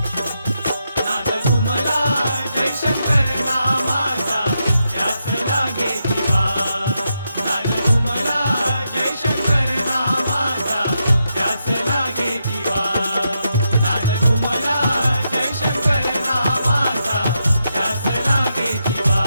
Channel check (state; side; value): inverted; both; correlation -0.84